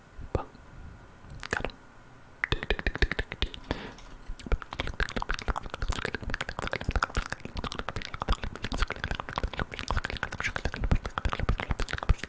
Boom. Got him.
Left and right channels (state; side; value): identical; both; correlation 1.00